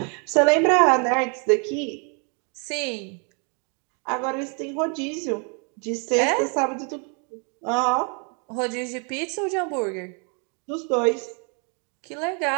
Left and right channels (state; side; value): quieter; left; 37.7 dB